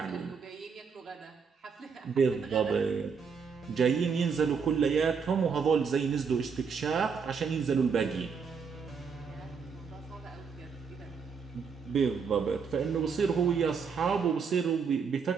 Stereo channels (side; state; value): left; quieter; 5.9 dB